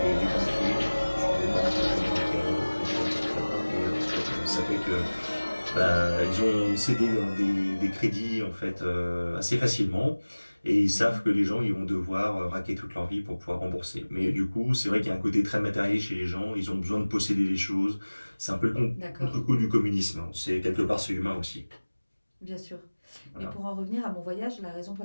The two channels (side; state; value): both; inverted; correlation -1.00